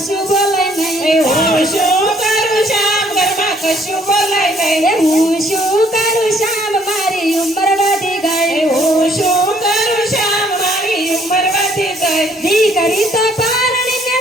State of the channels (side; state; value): both; normal; correlation 0.64